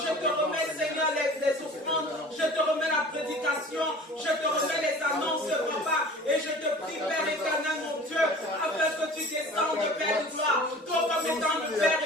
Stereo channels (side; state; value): both; normal; correlation 0.43